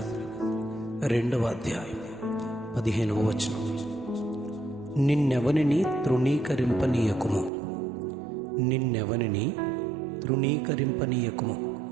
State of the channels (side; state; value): left; drops out; at 7.5 s